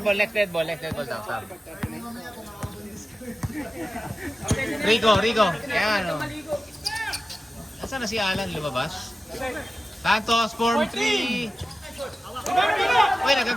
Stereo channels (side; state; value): both; normal; correlation 0.94